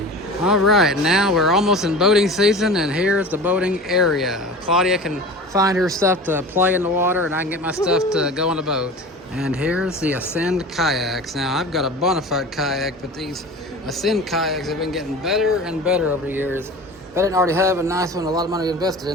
All right, now we're almost in boating season and here's the boating area. Claudia can find her stuff to play in the water and I can get my stuff to go on the boat. And here's the Ascend kayaks. Now I've got a Bonafide kayak, but these Ascend kayaks have been getting better and better over the years. If I didn't already have a nice one, a lot of money invested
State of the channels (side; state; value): both; normal; correlation 0.35